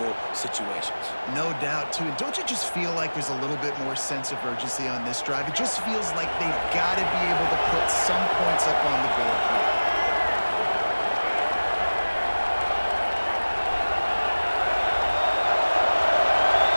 situations. No doubt, too. And don't you just feel like there's a little bit more sense of urgency on this drive? It just feels like they've got to be able to put some points up on the board here.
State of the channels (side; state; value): both; inverted; correlation -1.00